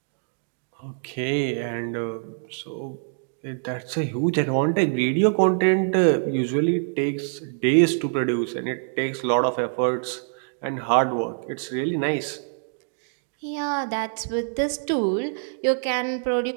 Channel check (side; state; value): left; silent; digital silence